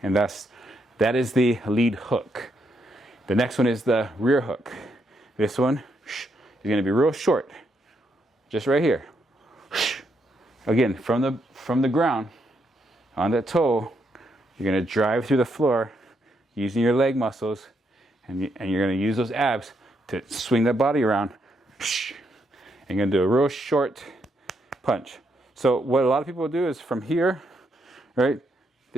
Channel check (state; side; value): normal; both; correlation 0.78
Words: And that is the lead hook. The next one is the rear hook. This one is going to be real short. Just right here. Again, from the ground, on that toe, you're going to drive through the floor using your leg muscles, and you're going to use those abs to swing that body around. And you're going to do a real short punch. So what a lot of people do is from here, right,